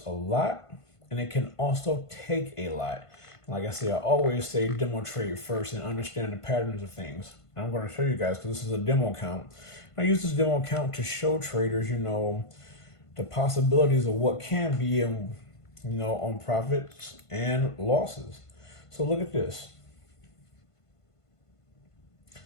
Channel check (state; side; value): late; right; 1.5 ms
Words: a lot, and it can also take a lot. Like I say, I always say demo trade first and understand the patterns of things. And I'm going to show you guys because this is a demo account. I use this demo account to show traders, the possibilities of what can be in, on profits and losses. So look at this.